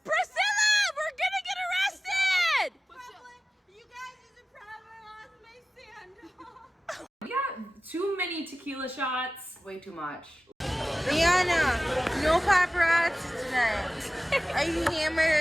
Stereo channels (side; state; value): both; normal; correlation 0.97